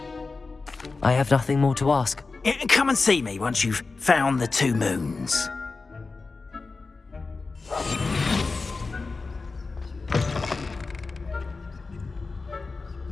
I have nothing more to ask. Come and see me once you've found the 2 moons.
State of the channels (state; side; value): quieter; right; 4.0 dB